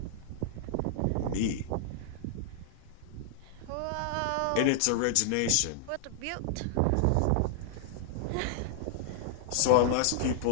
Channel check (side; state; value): both; different; correlation -0.01